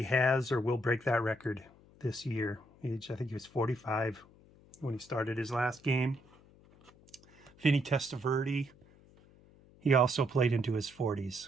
has or will break that record this year. I think he was 45 when he started his last game. Vinny Testaverde, he also played into his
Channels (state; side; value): noise; left; hum, 26 dB below the sound